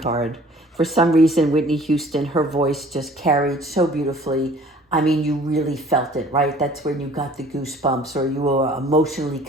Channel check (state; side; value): normal; both; correlation 0.51